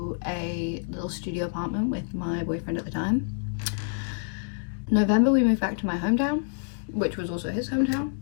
a little studio apartment with my boyfriend at the time. November, we moved back to my hometown, which was also his hometown.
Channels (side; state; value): right; silent; digital silence